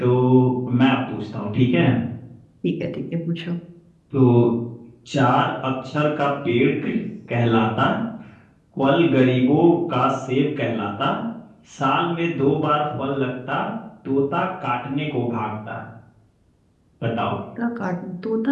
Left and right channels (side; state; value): both; identical; correlation 1.00